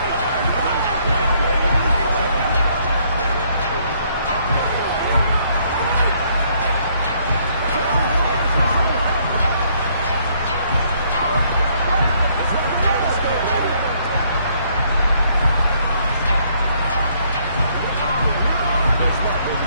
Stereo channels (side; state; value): both; inverted; correlation -0.68